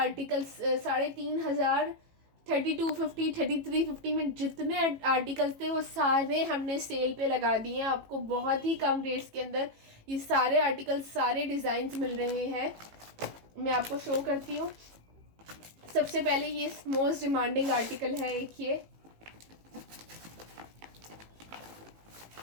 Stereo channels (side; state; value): left; late; 18 ms